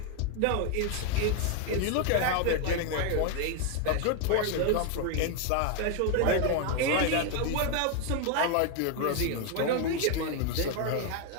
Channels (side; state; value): both; different; correlation 0.01